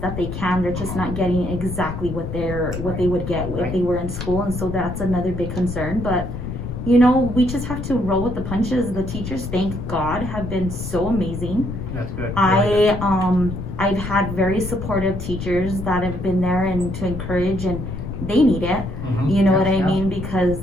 that they can. They're just not getting exactly what they would get if they were in school, and so that's another big concern. But we just have to roll with the punches. The teachers, thank God, have been so amazing. That's good. I've had very supportive teachers that have been there and to encourage, and they need it. What I mean? Because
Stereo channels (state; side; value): noise; left; rumble, 6 dB below the sound